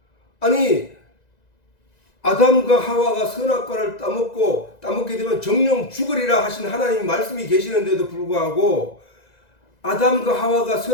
아니, 아담과 하와가 선악과를 따먹게 되면 정령 죽으리라 하신 하나님 말씀이 계시는데도 불구하고 아담과 하와가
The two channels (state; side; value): late; right; 1.9 ms